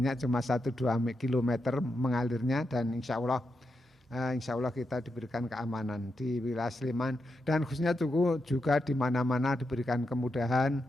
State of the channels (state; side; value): normal; both; correlation 0.85